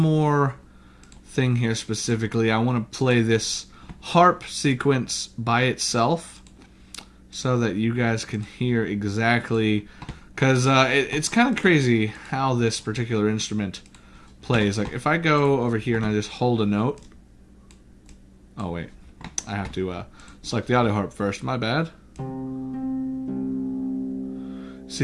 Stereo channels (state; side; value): identical; both; correlation 1.00